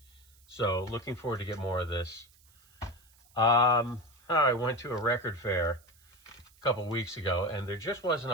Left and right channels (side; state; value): right; noise; hiss, 29 dB below the sound